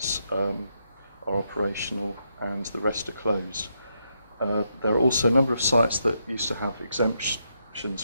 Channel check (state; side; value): inverted; both; correlation -0.80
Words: are operational and the rest are closed. There are also a number of sites that used to have exemptions